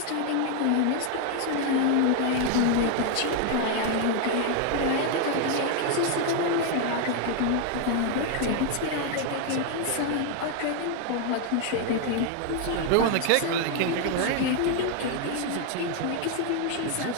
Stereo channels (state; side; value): different; both; correlation 0.00